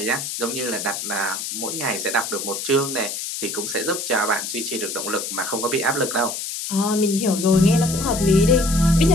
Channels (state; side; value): noise; left; hiss, 5 dB below the sound